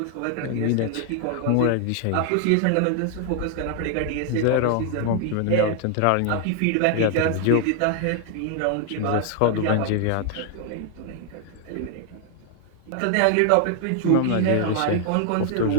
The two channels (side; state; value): both; different; correlation 0.00